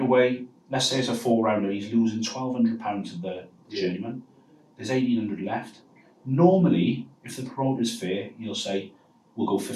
let's say it's a 4-rounder, he's losing £1,200 to the journeyman. There's $1,800 left. Normally, if the promoter's fair, he'll say, we'll go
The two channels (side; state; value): both; identical; correlation 1.00